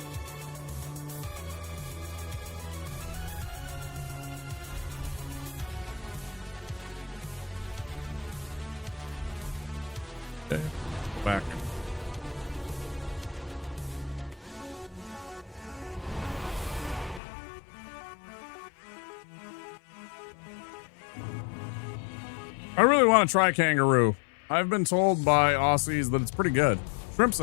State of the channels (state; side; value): drops out; right; at 17.2 s